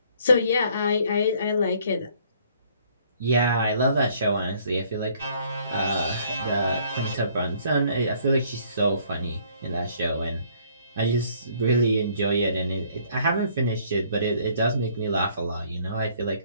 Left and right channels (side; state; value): both; inverted; correlation -0.61